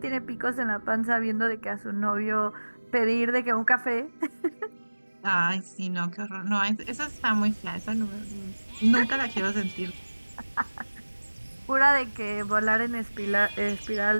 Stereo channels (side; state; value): both; inverted; correlation -1.00